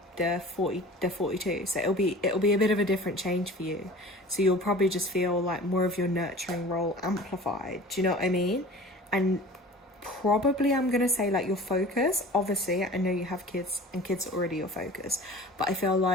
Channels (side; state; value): both; normal; correlation 0.41